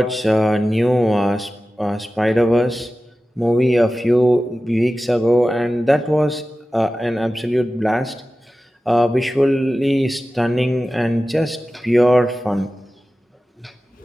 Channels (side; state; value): both; normal; correlation 0.95